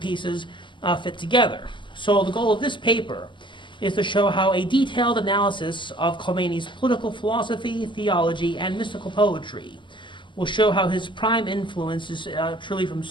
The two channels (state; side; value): late; right; 0.24 ms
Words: fit together. So the goal of this paper is to show how a detailed analysis of Khomeini's political philosophy, theology, and mystical poetry will show how his prime influence is truly from